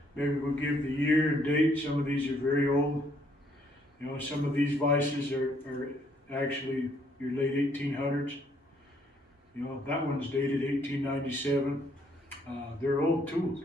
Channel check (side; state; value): both; normal; correlation 0.67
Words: Maybe we'll give the year and date. Some of these are very old. You know, some of these vices are actually your late 1800s. You know, that one's dated 1897. They're old tools.